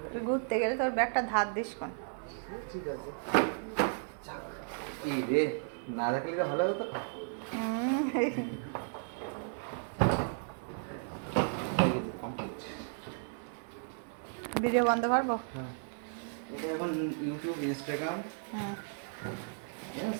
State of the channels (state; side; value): silent; left; 55 dB below the other